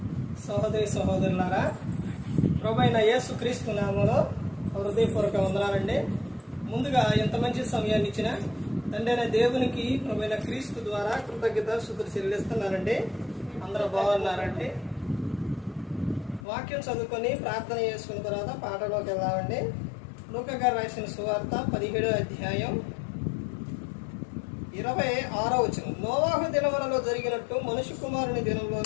సహోదరి సహోదరులారా, ప్రభువైన యేసు క్రీస్తు నామములో హృదయపూర్వక వందనాలండి. ముందుగా ఎంత మంచి సమయాన్ని ఇచ్చిన తండ్రి అయిన దేవునికి ప్రభువైన క్రీస్తు ద్వారా కృతజ్ఞత స్తుతులు చెల్లిస్తున్నారండి. అందరూ బాగున్నారండి. వాక్యం చదువుకొని ప్రార్థన చేసుకున్న తర్వాత పాటలోకి వెళ్దామండి. లూకా గారు రాసిన సువార్త 17వ అధ్యాయం 26వ వచనం. నోవాహు దినములలో జరిగినట్టు మనుష్య కుమారుని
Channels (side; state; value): right; drops out; at 16.4 s